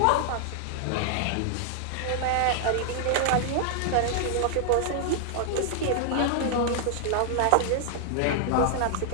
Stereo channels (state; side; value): different; both; correlation 0.00